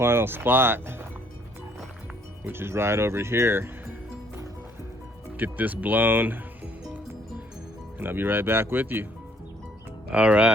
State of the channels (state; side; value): normal; both; correlation 0.63